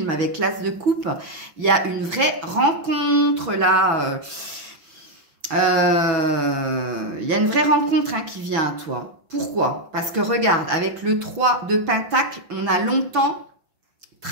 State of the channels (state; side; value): late; left; 6.1 ms